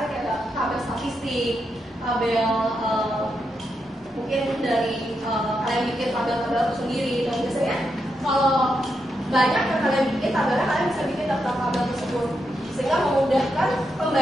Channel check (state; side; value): normal; both; correlation 0.84